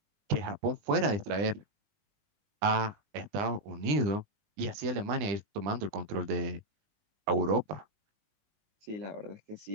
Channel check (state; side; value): late; left; 19 ms